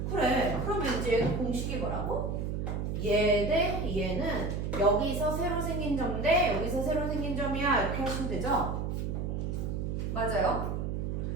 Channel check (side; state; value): right; noise; hum, 2 dB below the sound